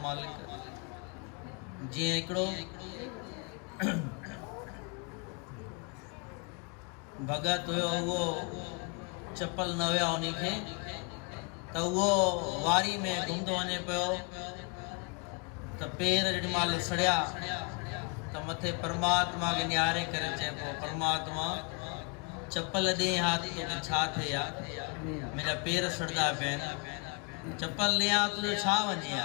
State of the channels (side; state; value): right; quieter; 33.7 dB